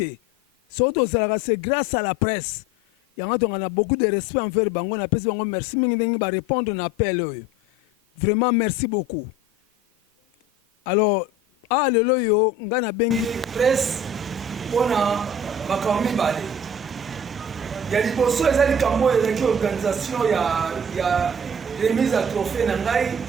soto zalaka c'est grâce à la presse yanga to ngana beaucoup de respect envers bango na pesi bango merci mingi ndengi ba répondre na appel oyo vraiment merci beaucoup alors lelo yo ngana bengi presse pona bakambi bale ya liboso eza likambo ezaki organisation ya remise à trophée na ngai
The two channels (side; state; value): both; normal; correlation 0.43